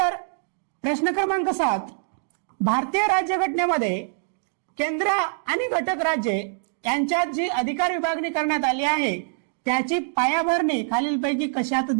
प्रश्न क्रमांक 7, भारतीय राज्यघटनेमध्ये केंद्र आणि घटक राज्ये यांच्यात जी अधिकार विभागणी करण्यात आली आहे त्याची पायाभरणी खालीलपैकी कशात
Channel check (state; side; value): silent; left; digital silence